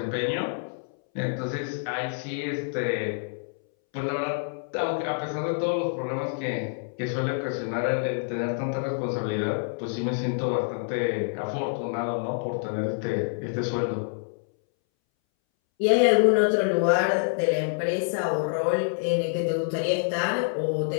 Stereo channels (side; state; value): right; silent; 60 dB below the other